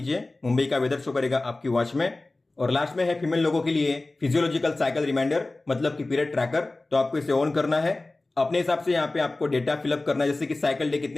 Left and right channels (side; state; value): right; quieter; 3.0 dB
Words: मुंबई का वेदर शो करेगा आपकी वॉच में। और लास्ट में है फीमेल लोगों के लिए फिजियोलॉजिकल साइकिल रिमाइंडर, मतलब कि पीरियड ट्रैकर। तो आपको इसे ऑन करना है। अपने हिसाब से यहाँ पे आपको डेटा फिलअप करना है, जैसे कि साइकिल डे